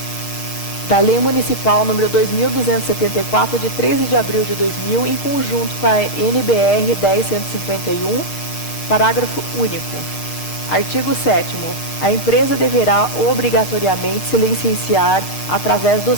da Lei Municipal número 2.274, de 13 de abril de 2000, em conjunto com a NBR 10.151, parágrafo único. Artigo 7º. A empresa deverá obrigatoriamente se licenciar através do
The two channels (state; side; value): late; right; 6.5 ms